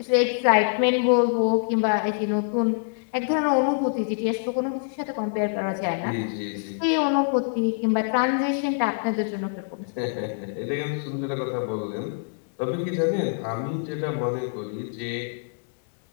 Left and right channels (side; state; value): right; silent; digital silence